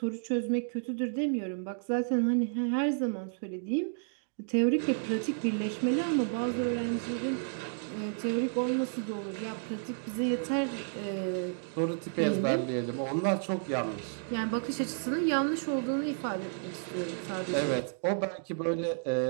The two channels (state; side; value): silent; left; digital silence